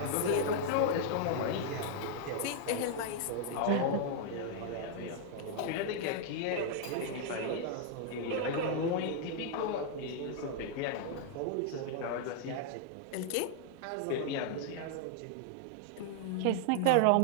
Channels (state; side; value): different; both; correlation -0.01